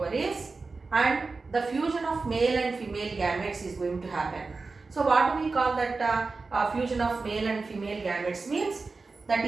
and the fusion of male and female gametes is going to happen. So what do we call that fusion of male and female gametes means? That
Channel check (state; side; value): quieter; left; 4.0 dB